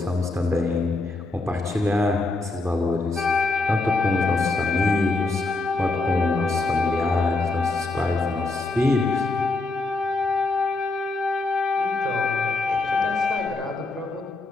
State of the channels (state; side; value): quieter; right; 3.2 dB